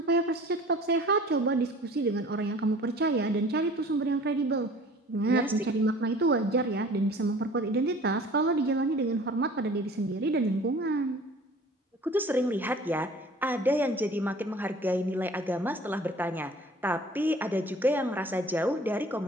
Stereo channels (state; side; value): normal; both; correlation 0.47